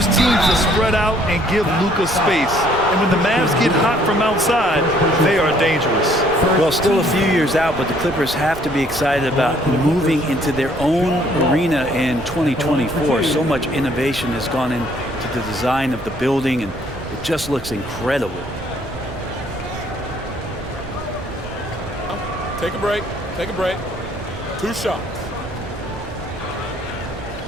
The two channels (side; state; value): right; noise; rumble, 15 dB below the sound